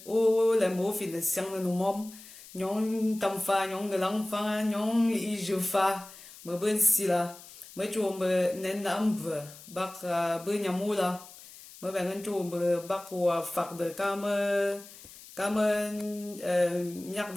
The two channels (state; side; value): noise; left; hiss, 18 dB below the sound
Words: o le mo fi de siang no mom nyong tam fa nyong gelang fa nyong I je fa me ben si la me chu me nen nam be bak be nyamula me ben chu me bak wa fak de ka me nyak